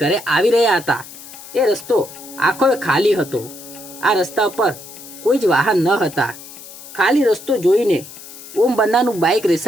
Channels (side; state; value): left; noise; hiss, 16 dB below the sound